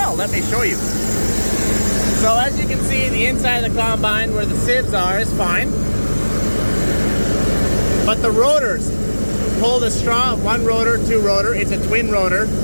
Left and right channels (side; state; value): both; inverted; correlation -1.00